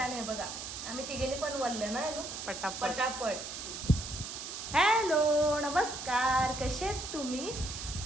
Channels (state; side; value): noise; right; hiss, 7 dB below the sound